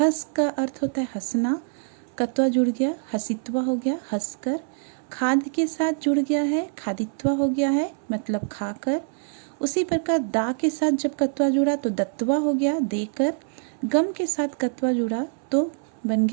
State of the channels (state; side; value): silent; left; 62 dB below the other